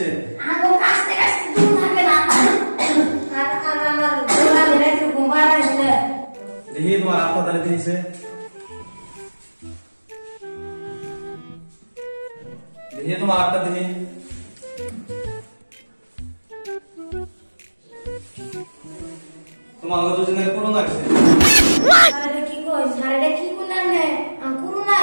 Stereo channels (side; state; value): both; inverted; correlation -1.00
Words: আগো কাছে কাছে দূর থাকে না। আর আমার গোলা মেরে একটু ঘুমা আসলে। দেখি তোমার হাতটা তাহলে কি হইছে? দেখি তোমার হাতটা দেখি। তোমার আগে দুজনে করোনা হইছে। আরে কি কইছ? আরে কি কোনা নে? করোনা